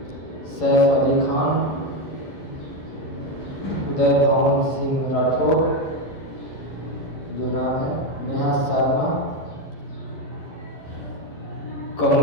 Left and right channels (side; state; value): right; late; 11 ms